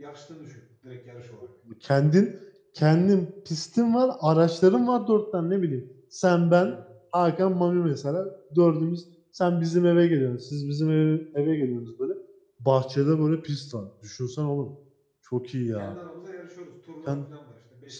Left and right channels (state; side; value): identical; both; correlation 1.00